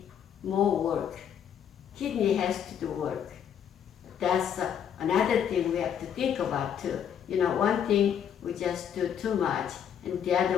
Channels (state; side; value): quieter; right; 8.7 dB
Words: more work. Kidney has to do work. That's another thing we have to think about too. One thing we just do too much, and the